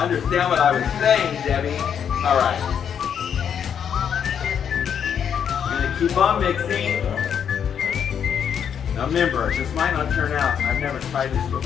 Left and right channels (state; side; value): quieter; right; 8.1 dB